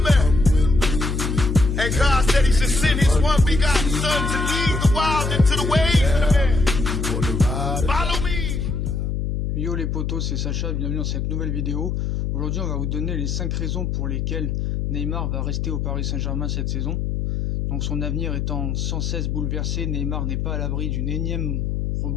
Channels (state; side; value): noise; left; hum, 1 dB below the sound